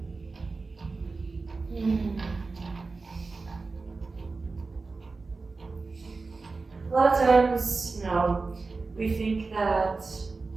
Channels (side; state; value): left; quieter; 3.9 dB